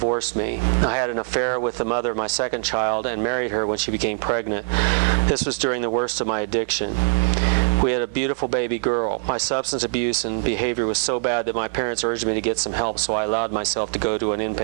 me. I had an affair with the mother of my second child and married her when she became pregnant. This was during the worst of my addiction. We had a beautiful baby girl. My substance abuse and behavior was so bad that my parents urged me to get some help, so I allowed myself to go to an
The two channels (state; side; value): silent; left; digital silence